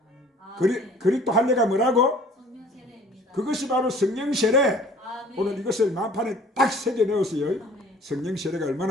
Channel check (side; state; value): both; normal; correlation 0.52